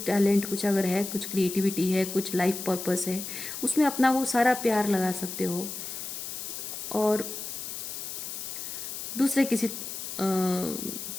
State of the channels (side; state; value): left; noise; hiss, 7 dB below the sound